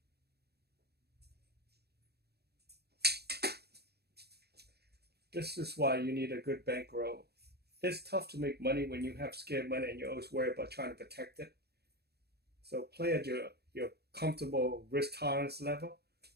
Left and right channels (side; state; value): left; late; 0.47 ms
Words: This is why you need a good bankroll. It's tough to make money when you have scared money and you always worry about trying to protect it. So play at your comfortable risk tolerance level,